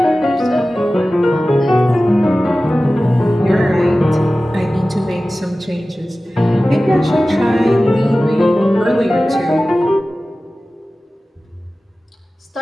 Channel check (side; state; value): both; normal; correlation 0.96